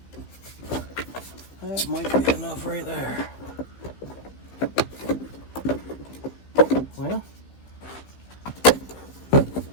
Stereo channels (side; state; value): right; late; 15 ms